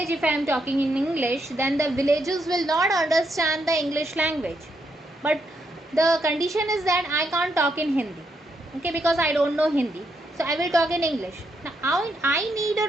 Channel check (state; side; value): normal; both; correlation 0.79